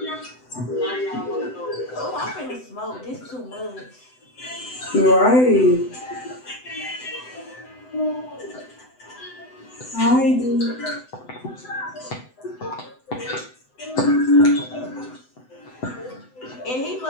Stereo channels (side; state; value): right; late; 7.9 ms